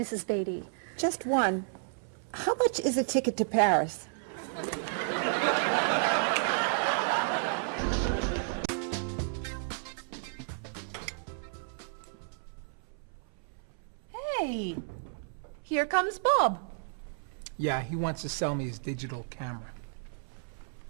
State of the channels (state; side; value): silent; left; 56 dB below the other